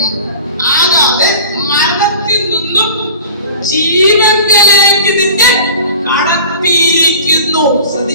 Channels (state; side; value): inverted; both; correlation -0.39